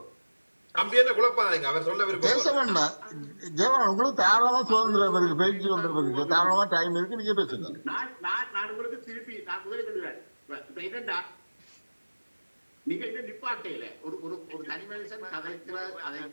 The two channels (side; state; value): both; inverted; correlation -1.00